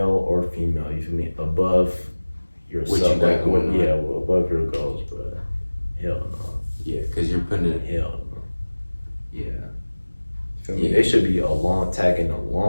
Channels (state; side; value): inverted; both; correlation -1.00